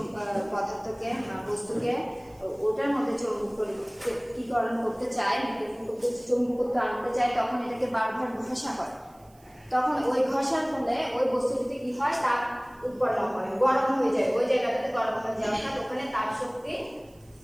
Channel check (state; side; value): noise; right; hiss, 30 dB below the sound